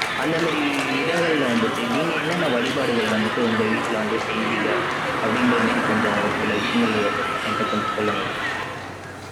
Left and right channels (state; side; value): identical; both; correlation 1.00